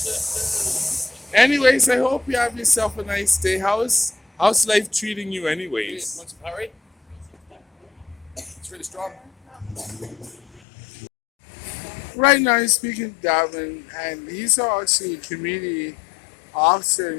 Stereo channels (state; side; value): drops out; right; at 10.6 s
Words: Anyways, I hope you have yourself a nice day. How's life treating you anyways? Want some Powerade? It's really strong. Right now I'm speaking to Davin, and he's actually a community officer,